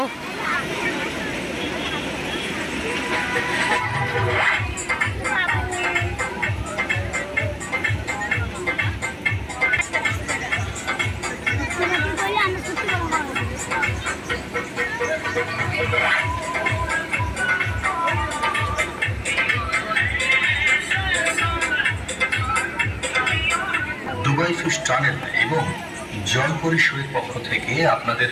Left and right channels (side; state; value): both; identical; correlation 1.00